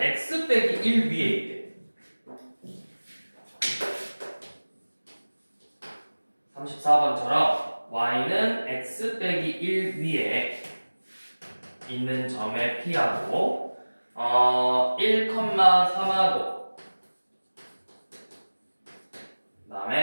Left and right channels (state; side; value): inverted; both; correlation -1.00